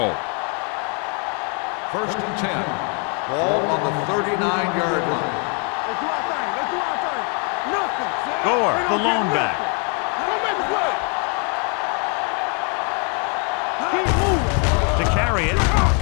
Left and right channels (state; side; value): quieter; right; 38.3 dB